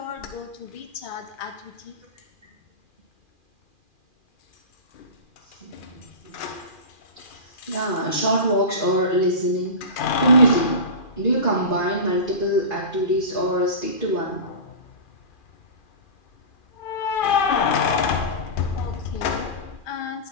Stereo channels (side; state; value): right; late; 2.4 ms